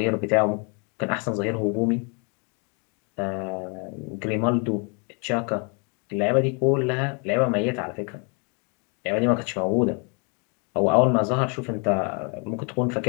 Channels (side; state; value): right; quieter; 35.7 dB